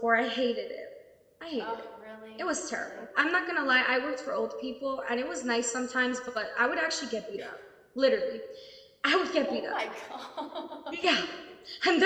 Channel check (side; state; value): both; identical; correlation 1.00